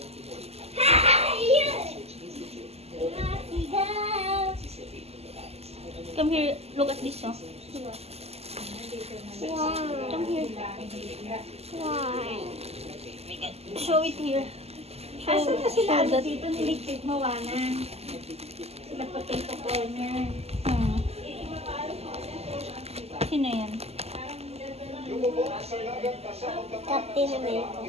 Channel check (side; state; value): left; late; 0.30 ms